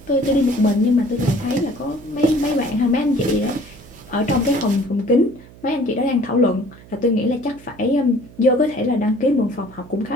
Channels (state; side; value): noise; right; hum, 21 dB below the sound